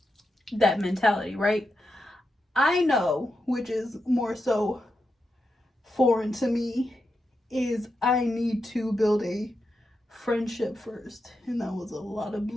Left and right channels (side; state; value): both; normal; correlation 0.87